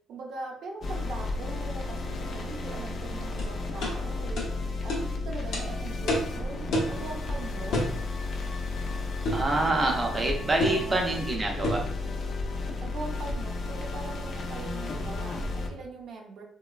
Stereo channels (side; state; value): both; normal; correlation 0.76